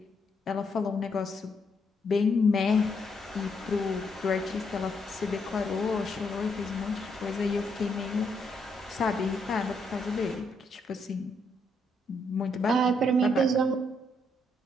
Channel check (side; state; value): both; normal; correlation 0.75